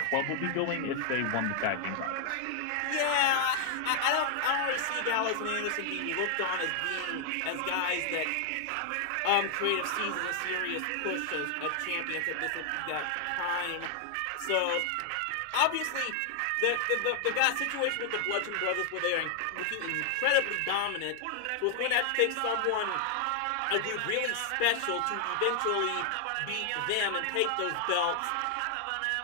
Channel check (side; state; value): both; different; correlation 0.00